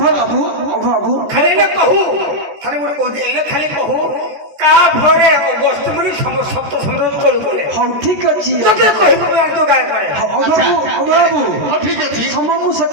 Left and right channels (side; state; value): left; late; 14 ms